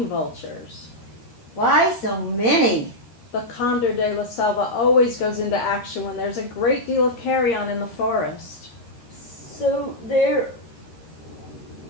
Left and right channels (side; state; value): right; late; 13 ms